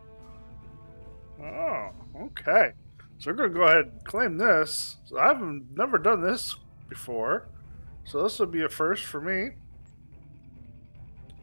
Oh, okay. So we're going to go ahead and claim this. So I've never done this before. So this will be a first for me.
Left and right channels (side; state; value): both; inverted; correlation -1.00